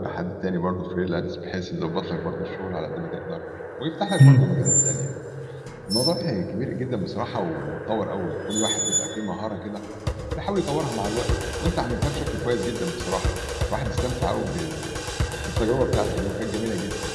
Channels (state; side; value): identical; both; correlation 1.00